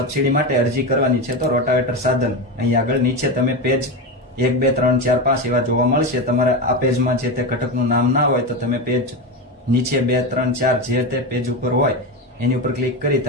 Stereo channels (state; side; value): normal; both; correlation 0.17